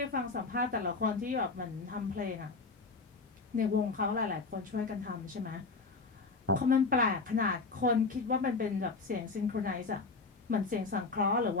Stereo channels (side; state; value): right; quieter; 4.1 dB